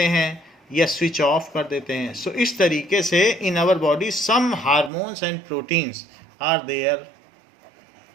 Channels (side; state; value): left; drops out; at 4.9 s